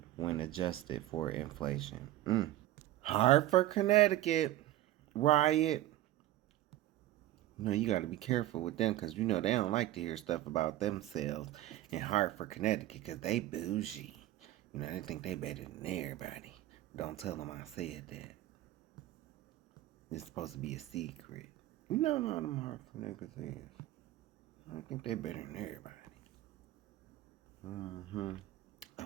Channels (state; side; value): quieter; left; 14.9 dB